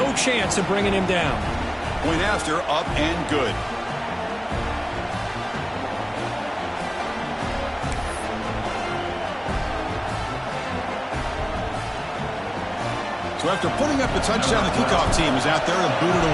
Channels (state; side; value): identical; both; correlation 1.00